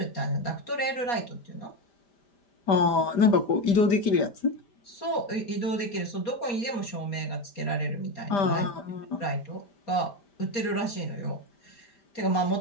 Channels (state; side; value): late; right; 4.2 ms